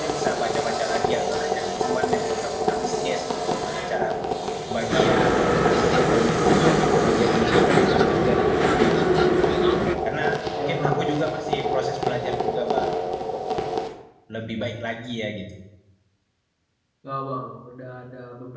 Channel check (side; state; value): both; identical; correlation 1.00